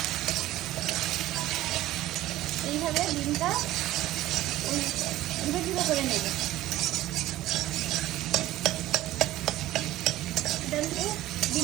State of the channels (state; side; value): quieter; left; 15.4 dB